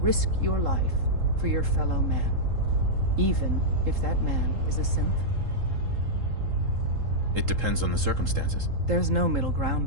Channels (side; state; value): left; late; 3.7 ms